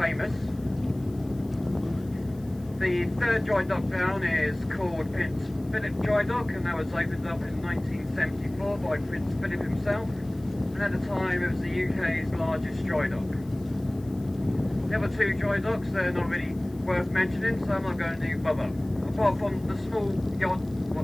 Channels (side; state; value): left; noise; hiss, 27 dB below the sound